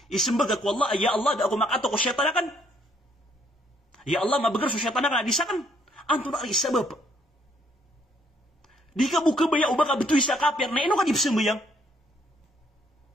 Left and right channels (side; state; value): both; normal; correlation 0.68